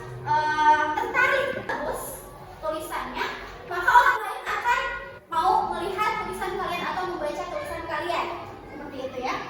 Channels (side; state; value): both; identical; correlation 1.00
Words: tertarik terus tulisannya, maka orang lain akan mau melihat tulisan kalian atau membaca tulisan kalian seperti itu ya.